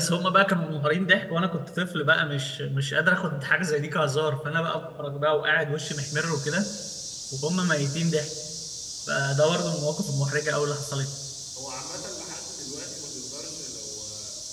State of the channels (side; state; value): both; identical; correlation 1.00